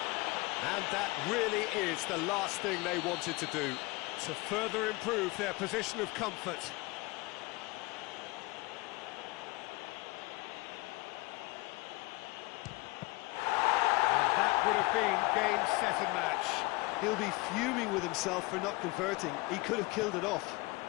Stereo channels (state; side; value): quieter; right; 23.3 dB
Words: And that really is the last thing they wanted to do, to further improve their position of comfort. And that would have been game, set and match. He'll be fuming with himself for not converting. He could have killed it off.